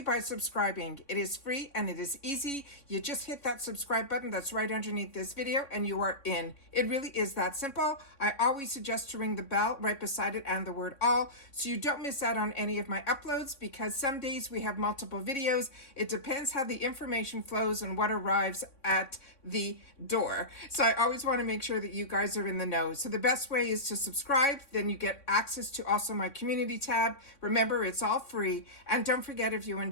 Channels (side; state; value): right; late; 3.6 ms